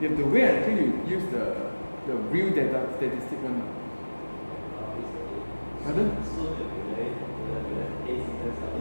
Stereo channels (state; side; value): inverted; both; correlation -1.00